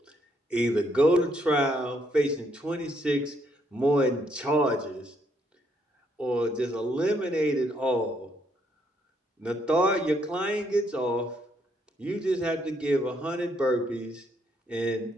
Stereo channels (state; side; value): normal; both; correlation 0.72